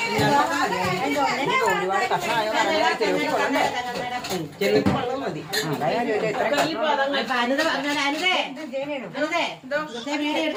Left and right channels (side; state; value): both; identical; correlation 1.00